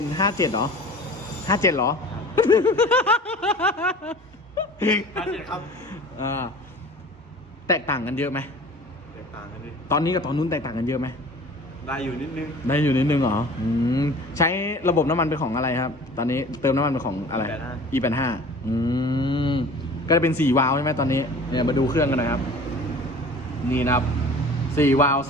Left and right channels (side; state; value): both; normal; correlation 0.43